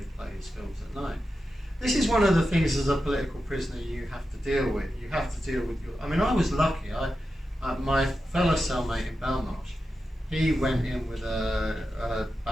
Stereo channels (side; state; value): both; normal; correlation 0.90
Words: play his films at night. This is one of the things as a political prisoner you have to deal with. You have to deal with your. I mean, I was lucky. My fellow cellmate in Belmarsh, he went in with a